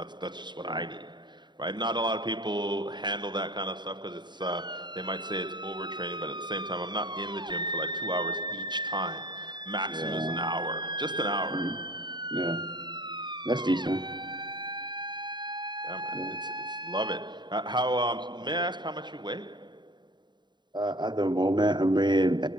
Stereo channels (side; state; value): left; late; 0.22 ms